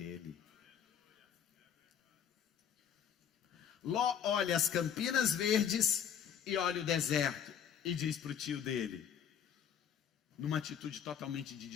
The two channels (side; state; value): right; quieter; 8.4 dB